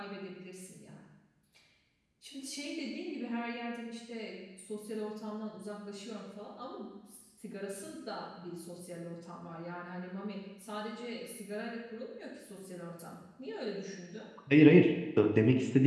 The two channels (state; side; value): identical; both; correlation 1.00